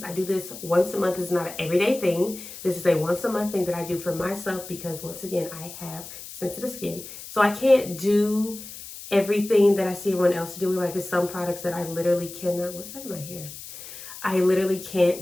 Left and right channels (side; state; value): left; noise; hiss, 13 dB below the sound